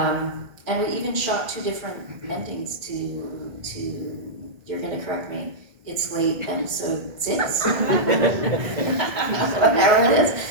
And we even shot 2 different endings to you're going to correct me, it's late episode 6. Whatever it is.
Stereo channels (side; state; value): left; late; 1.8 ms